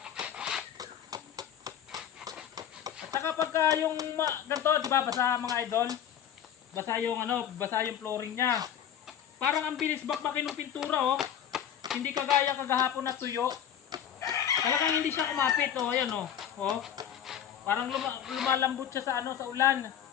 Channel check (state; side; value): quieter; right; 9.6 dB